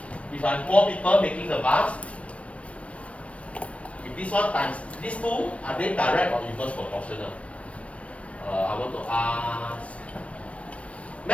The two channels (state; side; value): late; right; 0.063 ms